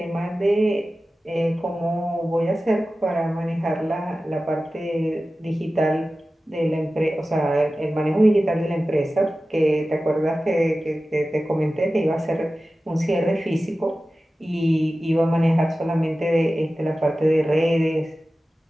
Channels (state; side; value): normal; both; correlation 0.95